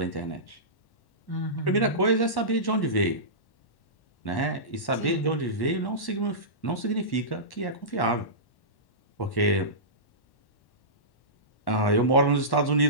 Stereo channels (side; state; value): right; late; 1.1 ms